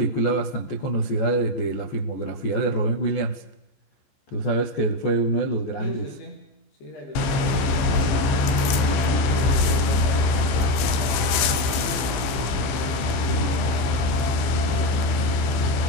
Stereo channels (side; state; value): right; late; 15 ms